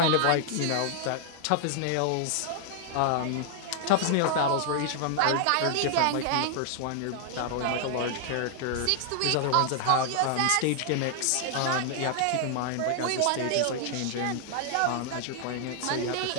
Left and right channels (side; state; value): both; different; correlation 0.00